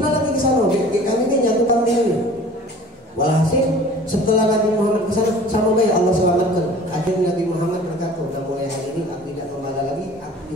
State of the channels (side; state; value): both; normal; correlation 0.46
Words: lagi ke sana. Kami ini jatuh kambing ini. Walhasil setelah Nabi Muhammad ke sana sama baik Allah selamatkan. Akhirnya Nabi Muhammad berkata, "Sudah mulai hari ini aku tidak membala lagi, aku